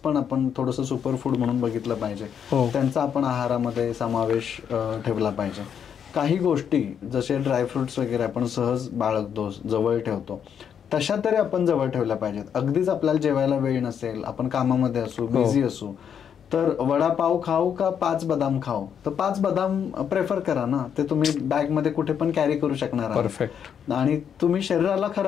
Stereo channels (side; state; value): right; quieter; 8.0 dB